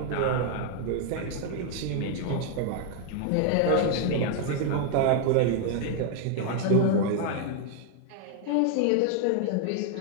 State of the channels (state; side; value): different; both; correlation 0.00